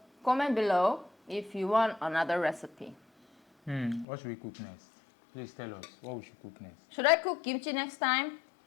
comment below if you want another recipe. What should we cook next? Please tell us what we should cook next. Should I cook kimchi next time?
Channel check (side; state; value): right; drops out; at 4.0 s